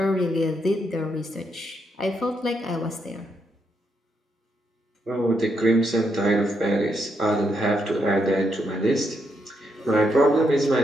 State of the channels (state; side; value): normal; both; correlation 0.79